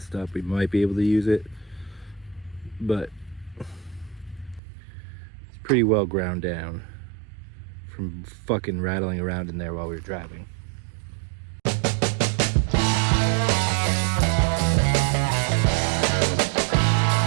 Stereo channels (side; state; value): left; drops out; at 4.6 s